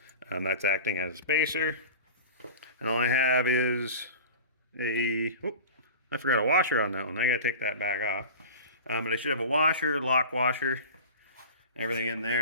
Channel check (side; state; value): both; inverted; correlation -0.35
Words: That's acting as a spacer. And all I have is a, oh, I forgot a washer on that one. I gotta take that back off. But I should have a washer, lock washer, everything in